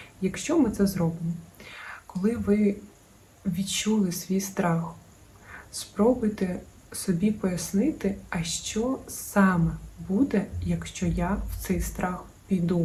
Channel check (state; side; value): identical; both; correlation 1.00